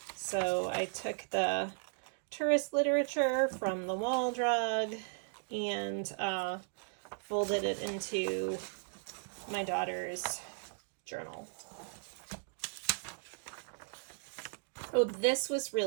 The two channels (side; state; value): left; silent; digital silence